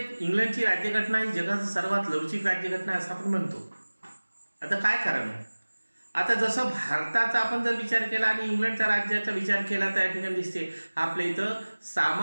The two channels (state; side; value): inverted; both; correlation -1.00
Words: राज्यघटना ही जगात सर्वात लवचिक राज्यघटना असं आपण म्हणतो. आता काय कारण? आता जसं भारताचा आपण जर विचार केला आणि इंग्लंडच्या राज्याचा विचार केला तर या ठिकाणी दिसते आपल्या इथं